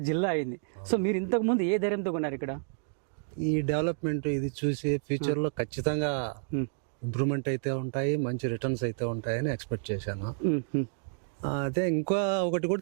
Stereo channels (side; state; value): left; silent; digital silence